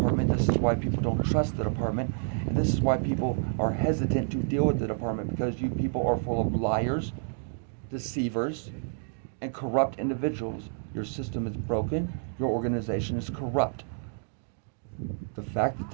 This is why people don't trust the department. And this is why people are hesitant to deal with the department, because you people are full of liars, deceivers, and corrupt individuals. Your system is broken. Your organization is corrupt. The fact that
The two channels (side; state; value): left; silent; digital silence